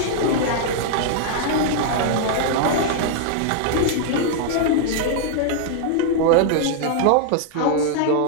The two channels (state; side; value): different; both; correlation -0.01